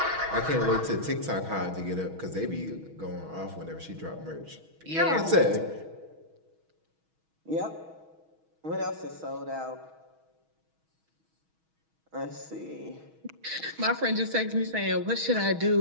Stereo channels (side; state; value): left; late; 6.3 ms